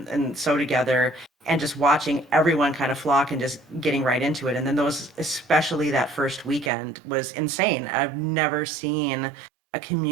so together, and just watching everyone kind of flock and just getting right into it. And then especially that first weekend was insane. I've never seen a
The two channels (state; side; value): drops out; left; at 6.7 s